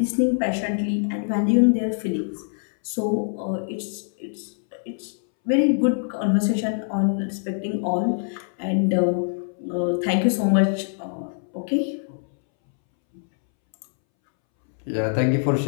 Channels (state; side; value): silent; right; 63 dB below the other